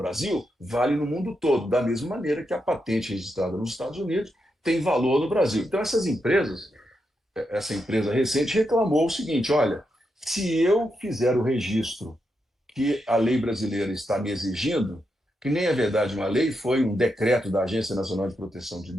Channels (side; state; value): both; normal; correlation 0.84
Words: vale no mundo todo, da mesma maneira que a patente registrada nos Estados Unidos tem valor no Brasil. Então, essas empresas, essa empresa recente reclamou o seguinte: olha, se eu fizer o registro que a lei brasileira está me exigindo, que nem é verdade uma lei, foi um decreto da Agência Nacional de Proteção de